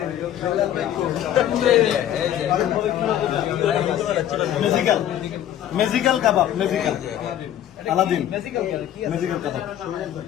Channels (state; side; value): quieter; right; 11.3 dB